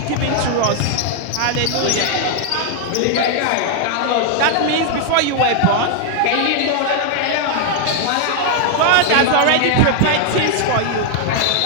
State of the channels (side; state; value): both; different; correlation 0.00